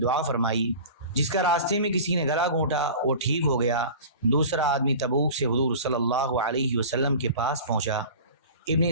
فرمائی۔ جس کا راستے میں کسی نے گلا گھونٹا وہ ٹھیک ہو گیا۔ دوسرا آدمی تبوک سے حضور صلی اللہ علیہ وسلم کے پاس پہنچا۔ ابن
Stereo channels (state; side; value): inverted; both; correlation -0.38